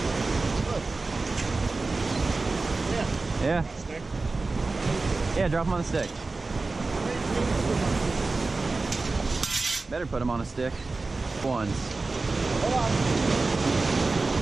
Yeah. Yeah, drop him on the stick. Better put him on a stick. Ones. Hold on.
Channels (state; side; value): quieter; left; 3.6 dB